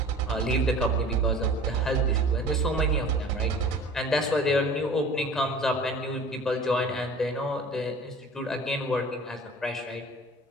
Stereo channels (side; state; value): both; normal; correlation 0.43